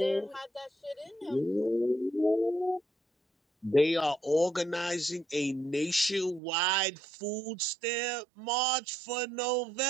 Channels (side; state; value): left; drops out; at 6.4 s